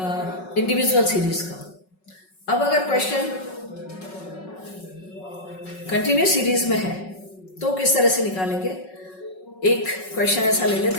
इंडिविजुअल सीरीज का। अब अगर क्वेश्चन कंटिन्यूस सीरीज में है तो किस तरह से निकालेंगे? एक क्वेश्चन ऐसा ले लेते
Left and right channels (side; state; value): right; late; 5.4 ms